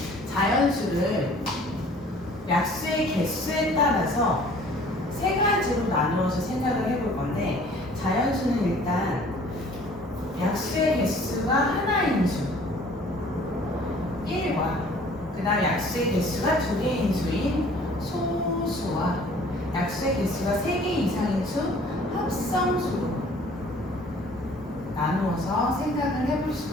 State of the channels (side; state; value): both; normal; correlation 0.52